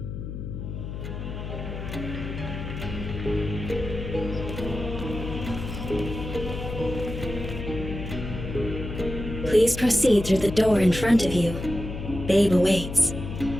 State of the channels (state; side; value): noise; left; hum, 7 dB below the sound